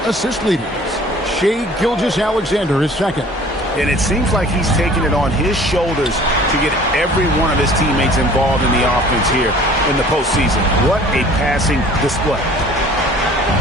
assist leaders. Shai Gilgeous-Alexander is second. And it seems like he's taking it on his shoulders to get every one of his teammates involved in the offense here in the postseason. What a passing display.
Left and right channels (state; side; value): normal; both; correlation 0.49